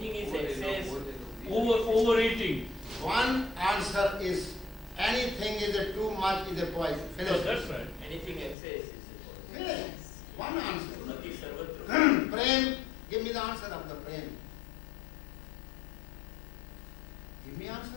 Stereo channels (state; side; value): drops out; right; at 8.6 s